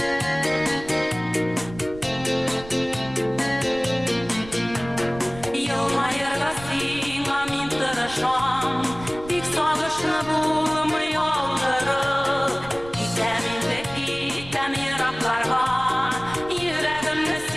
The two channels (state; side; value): noise; right; rumble, 16 dB below the sound